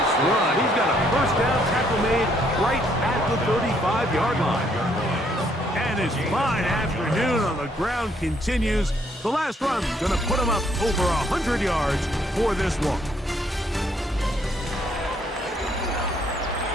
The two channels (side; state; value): both; normal; correlation 0.69